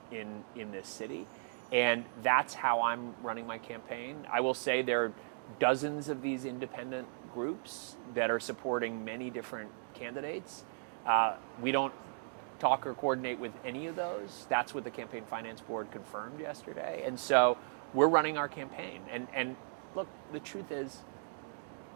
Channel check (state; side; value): silent; left; digital silence